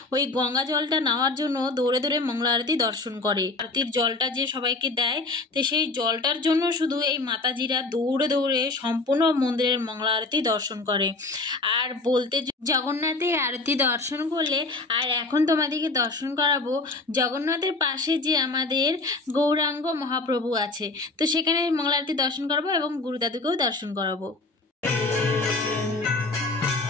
ওই গঙ্গা জলটা নেওয়ার জন্য দৌড়ে দৌড়ে মঙ্গলা আরতি দর্শন করে। আরতির জলটা যে সবাইকে দেয়, তো সেই জলটার জন্য শুধু এই মাতাজিরা দৌড়ে দৌড়ে সম্পূর্ণ মন্দিরের মঙ্গলা আরতি দর্শন করে। আর বলতে জগন্নাথে আরতি দর্শন করলে, আর এখন তোমাদেরকে দর্শন করাবো জগন্নাথের পাশে যে আমাদের গৌরাঙ্গ মহাপ্রভু আছে, তো সেখানে মঙ্গলা আরতি দর্শন করাবো এবং গুরুদাদুকেও দর্শন করাবো।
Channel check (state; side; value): quieter; right; 3.4 dB